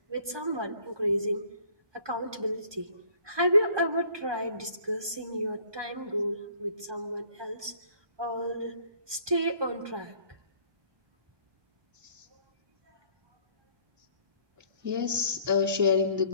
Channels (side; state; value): left; late; 1.2 ms